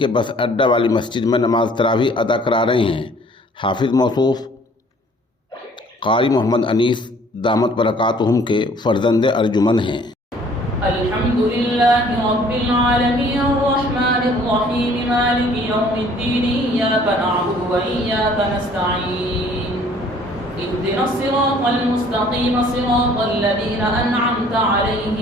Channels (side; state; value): both; normal; correlation 0.56